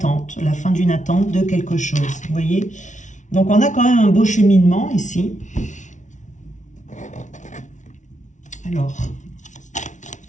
de quelque chose. Vous voyez? Donc, on a quand même un beau cheminement ici. Alors,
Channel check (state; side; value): late; right; 0.36 ms